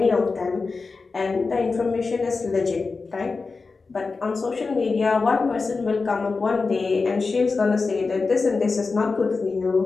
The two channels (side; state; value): right; quieter; 4.2 dB